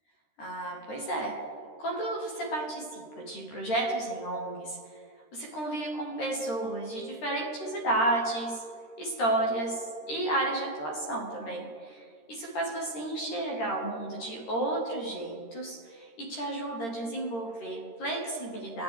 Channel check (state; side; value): late; right; 13 ms